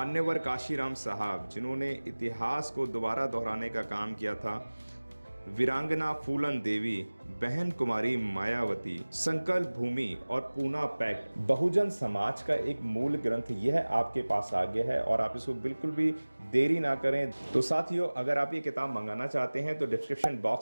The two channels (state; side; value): inverted; both; correlation -1.00